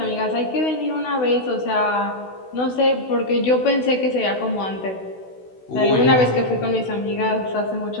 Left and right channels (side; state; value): right; late; 16 ms